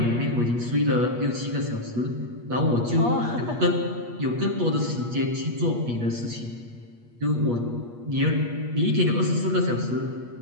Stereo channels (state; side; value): late; left; 8.4 ms